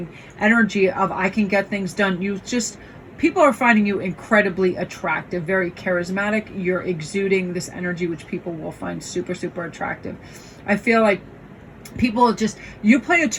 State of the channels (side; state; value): both; identical; correlation 1.00